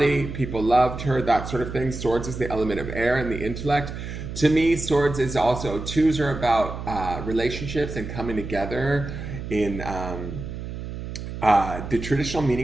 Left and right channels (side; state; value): right; noise; hum, 8 dB below the sound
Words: People loved her, that sort of thing. Swords is the element of air and the intellect. To me, Swords is also, twos are about relationships and coming together in the traditional